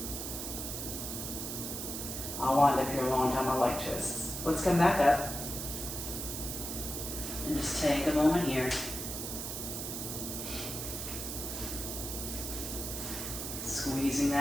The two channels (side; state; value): right; noise; hiss, 5 dB below the sound